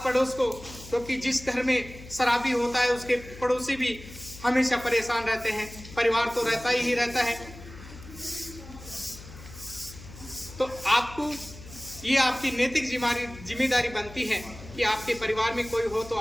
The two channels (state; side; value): noise; left; hum, 16 dB below the sound